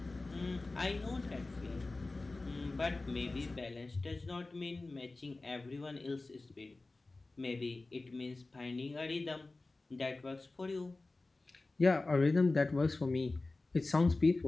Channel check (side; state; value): right; quieter; 3.3 dB